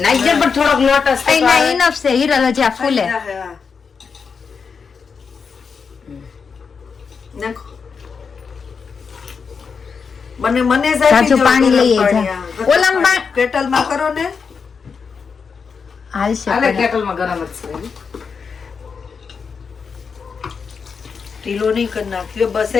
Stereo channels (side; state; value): right; quieter; 5.7 dB